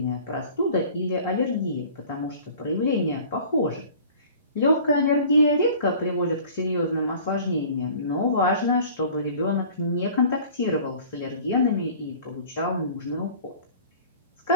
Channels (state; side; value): inverted; both; correlation -0.46